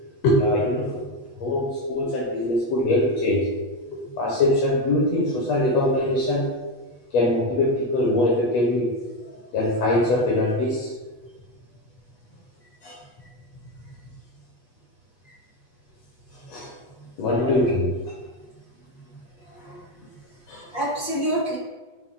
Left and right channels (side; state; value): right; late; 8.2 ms